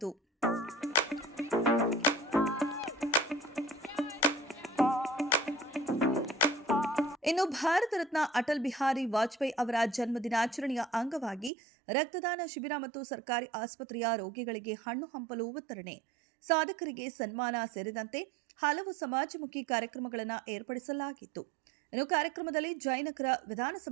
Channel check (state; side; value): drops out; left; at 11.5 s